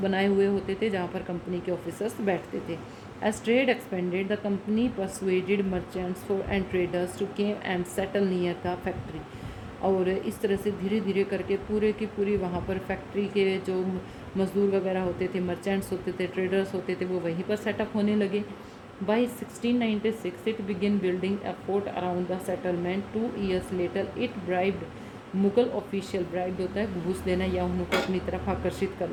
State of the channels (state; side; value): identical; both; correlation 1.00